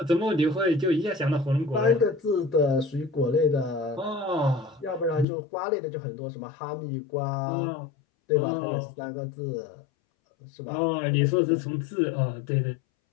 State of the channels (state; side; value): drops out; right; at 5.2 s